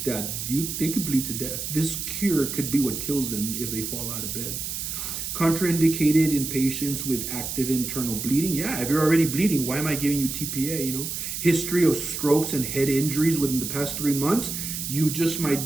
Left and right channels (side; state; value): right; noise; hiss, 5 dB below the sound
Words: They could bleed to death. This cure could be what kills them if they fall out of bed. Contraindicated in patients with active internal bleeding. Yeah, if you're already bleeding, why am I giving you TPA? You know, history of strokes and head injuries within the past 3 months. You just